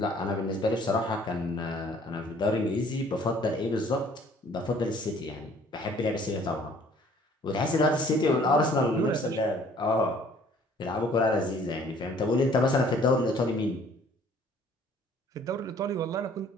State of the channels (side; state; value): both; normal; correlation 0.56